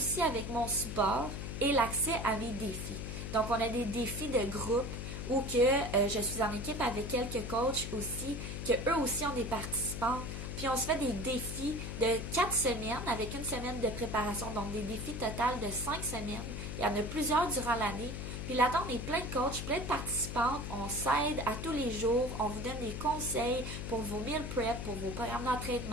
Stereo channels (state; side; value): noise; left; hum, 6 dB below the sound